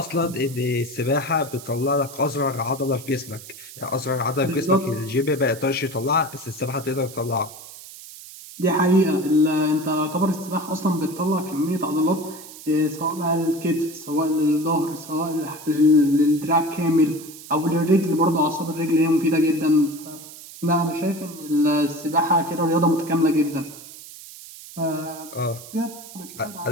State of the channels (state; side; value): noise; right; hiss, 16 dB below the sound